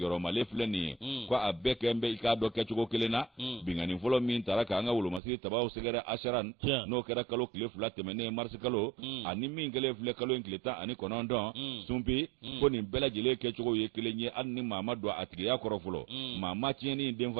male fleni kwa abeke mbe ikado ke chugo kelena bingani folo min taraka anga wulu masi tawa usegara asharan no kera kalo kile flate mene mars kalo ani min gele fle kalo inkleta ani konondo sumpi ko ni bela jile ke chugo ye kelenye anni mama do atige ya korofolo mama tieni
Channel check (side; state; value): left; drops out; at 5.2 s